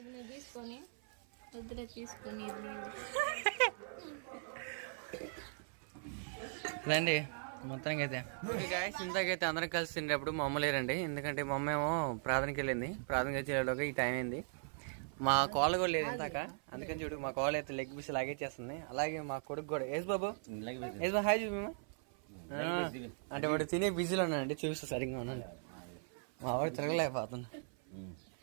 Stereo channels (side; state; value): left; silent; 52 dB below the other